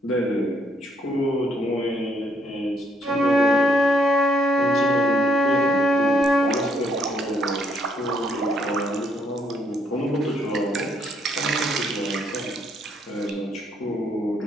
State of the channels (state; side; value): normal; both; correlation 0.71